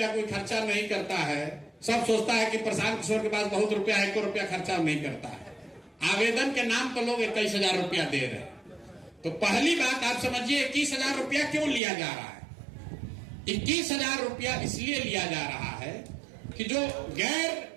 कोई खर्चा नहीं करता है। सब सोचता है कि प्रशांत किशोर के पास बहुत रुपया है, 1 रुपया खर्चा नहीं करता है। आवेदन के नाम पर लोग 21,000 रुपया दे रहे हैं। तो पहली बात आप समझिए, 21,000 रुपया क्यों लिया जा रहा है? 21,000 रुपया इसलिए लिया जा रहा है कि जो गैर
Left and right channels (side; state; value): left; drops out; at 11.8 s